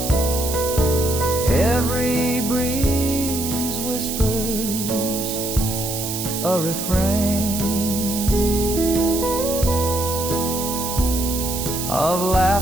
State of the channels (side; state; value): right; noise; hiss, 5 dB below the sound